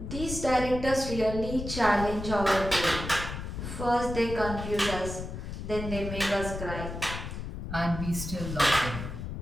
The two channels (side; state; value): left; noise; rumble, 7 dB below the sound